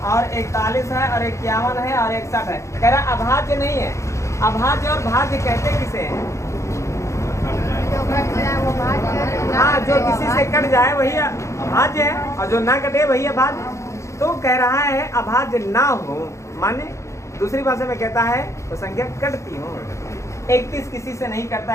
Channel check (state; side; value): late; right; 0.14 ms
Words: और 41 है और 51 है और 61 है। कह रहा है अभाज्य नहीं है। अभाज्य और भाज्य कहते किसे हैं? हाँ, जो किसी से कट जाए वही अभाज्य है और जो ना कटे वही अभाज्य। तो कह रहा है अभाज्य ना हो, माने दूसरी भाषा में कहता है तो संख्या कटती हो। 31 किसी से नहीं करता